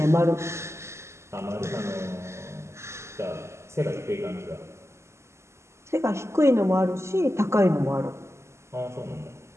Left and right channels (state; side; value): late; left; 0.13 ms